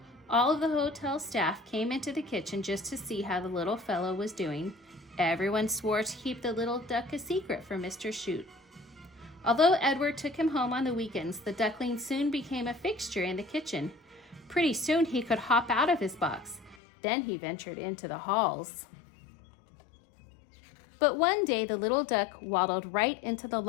all of the hotel staff came into the kitchen just to see how the little fellow was doing. Everyone swore to keep the little duck a secret from Mr. Chute. Although Edward took him home on the weekends, the duckling soon became a fixture in the kitchen. Pretty soon he could hop out of his box. Then he ventured into the halls. But one day the little duck waddled right into the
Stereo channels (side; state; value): right; drops out; at 16.8 s